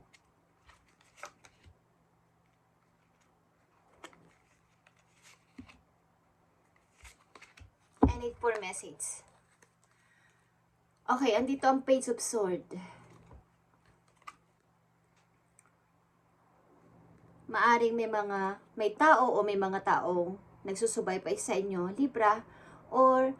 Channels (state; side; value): identical; both; correlation 1.00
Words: I need for message. Okay, andito ang Page of Swords. Maaring may tao o may mga taong nagsusubaybay sa inyo, Libra, or